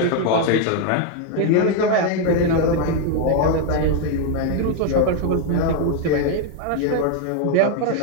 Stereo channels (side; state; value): both; different; correlation 0.01